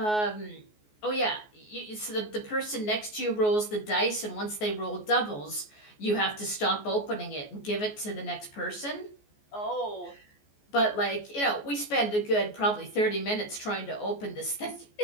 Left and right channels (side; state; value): right; late; 14 ms